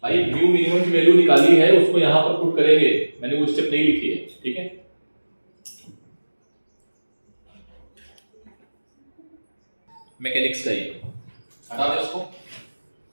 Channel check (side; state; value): both; inverted; correlation -1.00